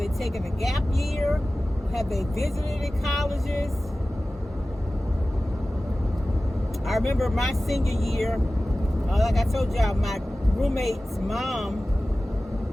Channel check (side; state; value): both; normal; correlation 0.96